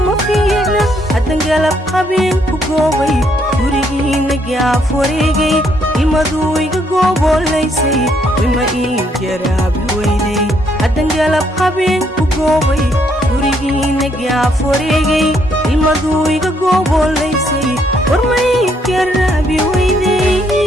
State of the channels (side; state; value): both; normal; correlation 0.71